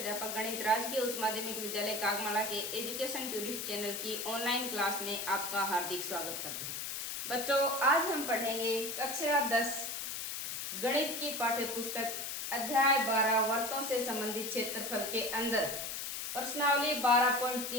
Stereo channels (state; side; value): noise; left; hiss, 4 dB below the sound